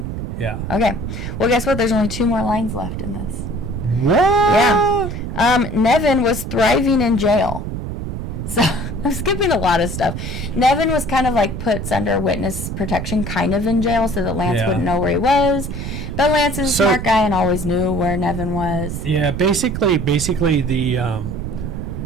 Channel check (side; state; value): right; noise; rumble, 5 dB below the sound